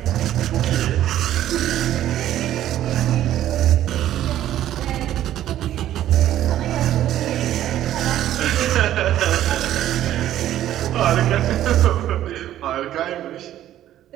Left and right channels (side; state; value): left; quieter; 12.4 dB